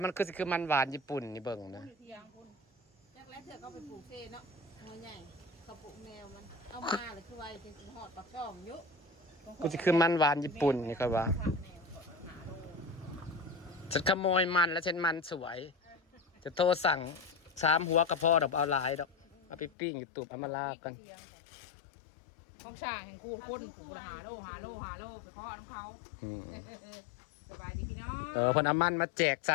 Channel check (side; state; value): right; drops out; at 19.7 s